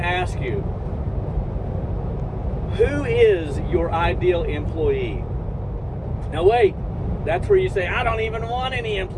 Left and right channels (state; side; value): identical; both; correlation 1.00